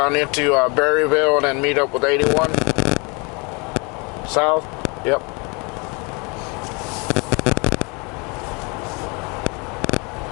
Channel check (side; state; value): right; quieter; 30.3 dB